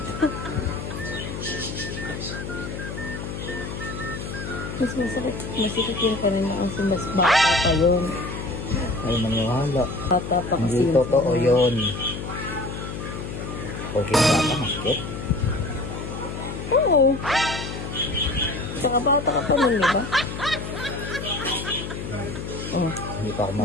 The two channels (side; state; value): left; noise; hum, 7 dB below the sound